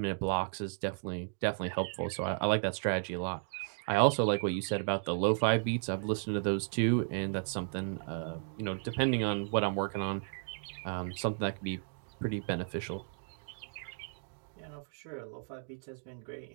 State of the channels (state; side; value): silent; left; digital silence